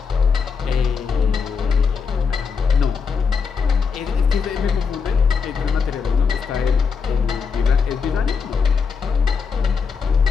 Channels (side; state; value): right; quieter; 5.7 dB